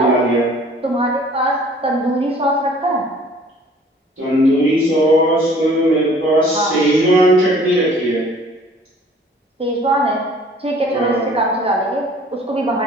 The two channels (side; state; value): both; normal; correlation 0.53